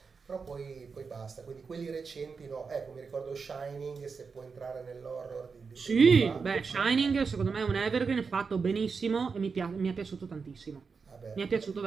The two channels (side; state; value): left; quieter; 5.2 dB